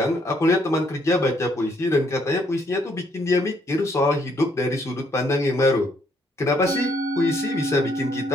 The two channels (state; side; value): normal; both; correlation 0.69